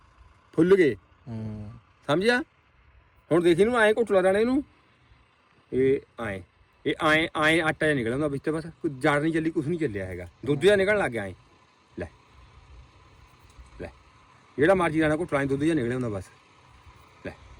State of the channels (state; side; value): identical; both; correlation 1.00